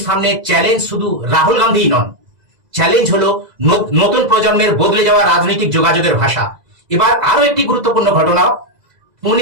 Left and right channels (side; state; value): left; late; 2.0 ms